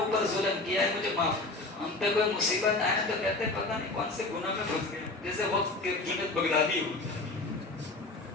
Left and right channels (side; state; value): right; quieter; 3.1 dB